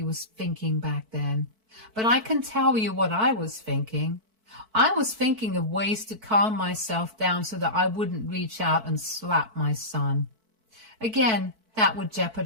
was thinking back then. But I can tell you what I was thinking. I was thinking of ways to calm myself down so that I wouldn't reach out and slap my son. Again, that would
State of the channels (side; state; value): left; late; 4.5 ms